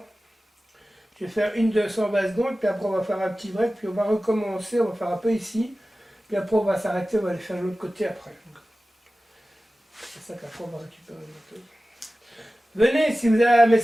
Je vais faire une 220 secondes, puis après on va faire un petit break, puis on va recommencer, on va faire un peu ici, puis après on va s'arrêter, on va aller faire de l'autre côté après. C'est ça qu'après on va récupérer le moto. Venez, si vous avez un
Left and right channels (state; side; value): normal; both; correlation 0.96